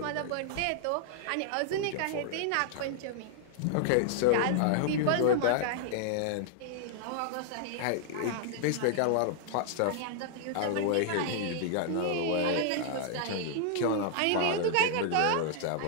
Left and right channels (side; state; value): both; different; correlation -0.01